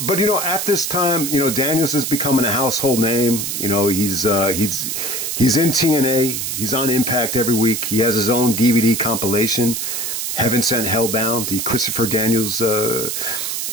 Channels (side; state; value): right; noise; hiss, 3 dB below the sound